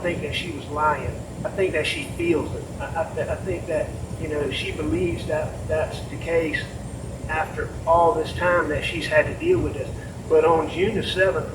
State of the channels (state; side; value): identical; both; correlation 1.00